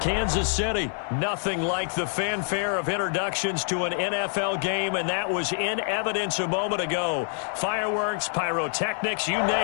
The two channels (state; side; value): silent; right; 61 dB below the other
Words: City. Nothing like the fanfare of introductions to an NFL game, and that was in evidence a moment ago. Fireworks, pyrotechnics, you